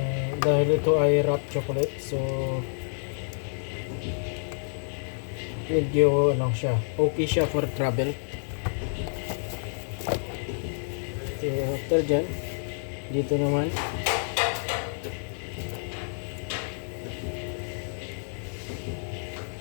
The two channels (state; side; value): silent; right; digital silence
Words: Dahil ito ay wrap chocolate, so medyo okay siya for travel. So after dyan, dito naman